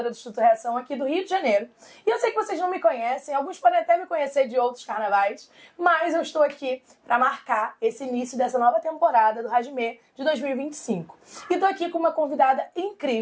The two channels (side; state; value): both; identical; correlation 1.00